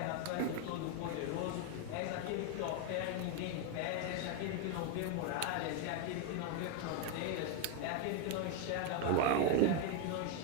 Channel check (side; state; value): both; different; correlation 0.01